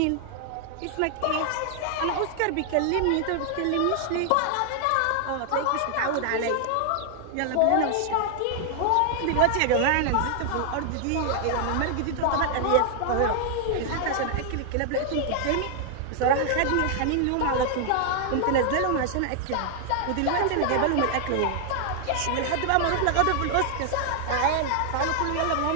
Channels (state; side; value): different; both; correlation 0.00